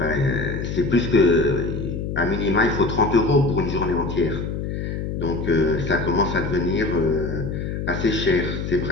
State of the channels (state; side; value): noise; left; hum, 4 dB below the sound